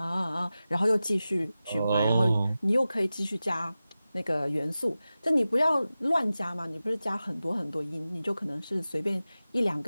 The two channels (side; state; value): both; inverted; correlation -0.95